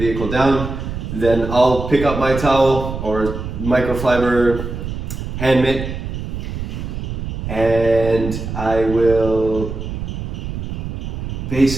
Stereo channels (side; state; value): right; noise; rumble, 6 dB below the sound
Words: down, then I'll pick up my towel or microfiber hand mitt, and I will